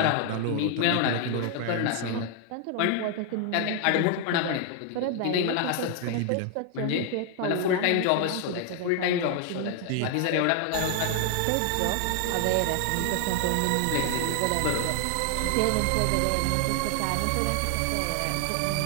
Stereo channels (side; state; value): both; different; correlation 0.00